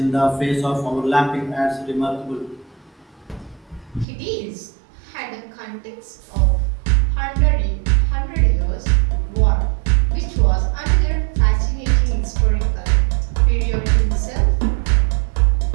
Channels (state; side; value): drops out; left; at 4.0 s